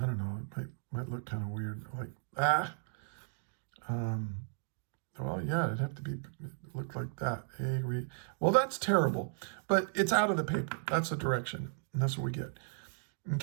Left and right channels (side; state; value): left; silent; digital silence